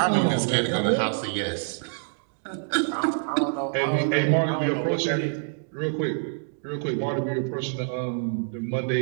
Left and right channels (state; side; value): silent; left; digital silence